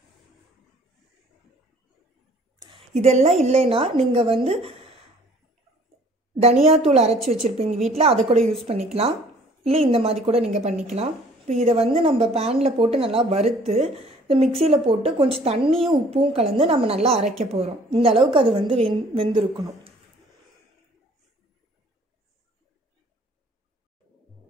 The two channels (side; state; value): both; normal; correlation 0.55